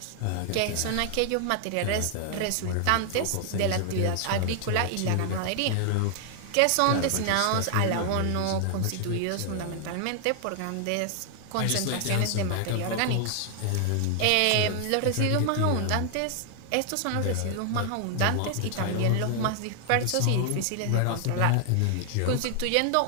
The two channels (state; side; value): different; both; correlation 0.00